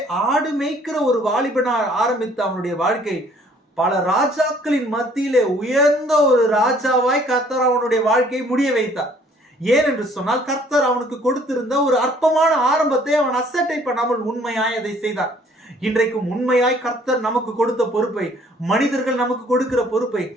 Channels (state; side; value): normal; both; correlation 0.59